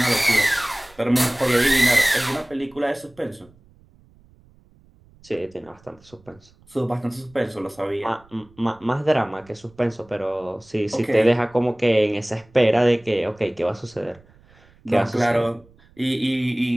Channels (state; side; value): noise; right; rumble, 29 dB below the sound